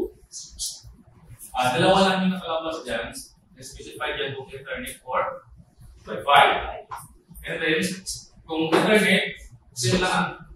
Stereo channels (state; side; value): identical; both; correlation 1.00